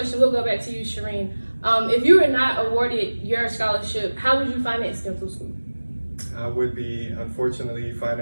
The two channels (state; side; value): inverted; both; correlation -1.00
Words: we'll go back to you, Shireen. If you were not awarded your scholarship, how would you finance dental school? I would be, unfortunately,